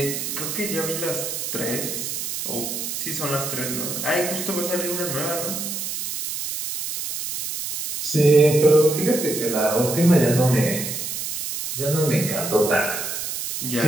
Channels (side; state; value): right; noise; hiss, 4 dB below the sound